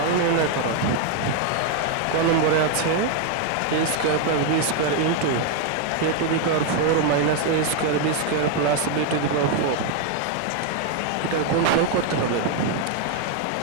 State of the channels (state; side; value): different; both; correlation 0.01